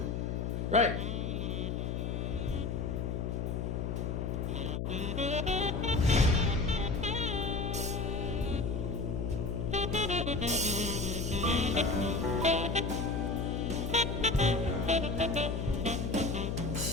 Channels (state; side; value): noise; left; hum, 2 dB below the sound